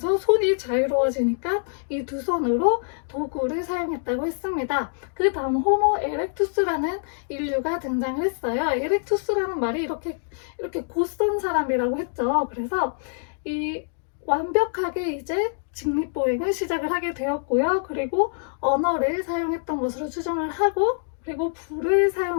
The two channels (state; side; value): silent; right; digital silence